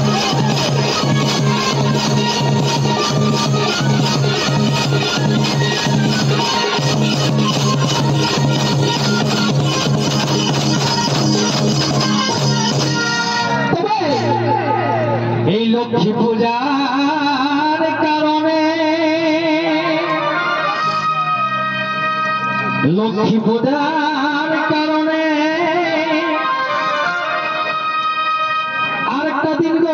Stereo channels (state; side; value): identical; both; correlation 1.00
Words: এই লক্ষ্মী পূজার কারণে লক্ষ্মী পূজার কারণে আরেকটা দিন